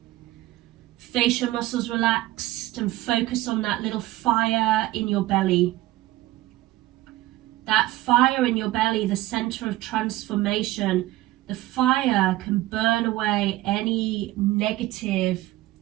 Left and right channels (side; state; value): left; quieter; 17.0 dB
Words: Facial muscles relaxed, and focus on that little fire in your belly. That fire in your belly, the center of transformation. The fire can burn away any negative